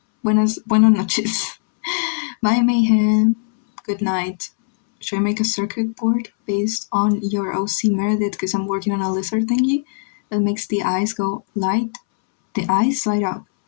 Buenas noches. Bye, Mayhem. Good night. Should I make a circuit board based on your OC Meredith? Because I'm working on a lizard thingy that makes the eyes go light. The eyes light up.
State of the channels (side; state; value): right; silent; 66 dB below the other